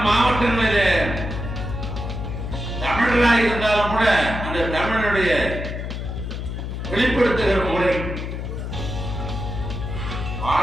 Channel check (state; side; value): noise; left; hum, 5 dB below the sound